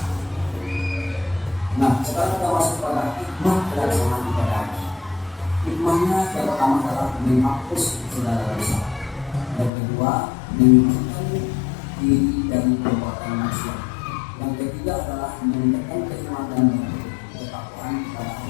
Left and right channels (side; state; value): right; drops out; at 9.7 s